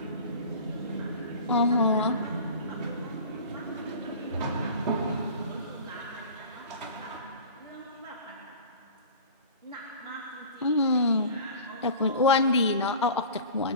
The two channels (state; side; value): inverted; both; correlation -0.38